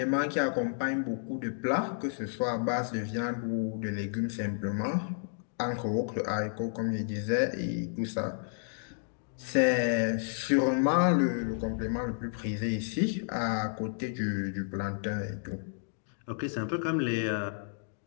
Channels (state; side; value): silent; right; digital silence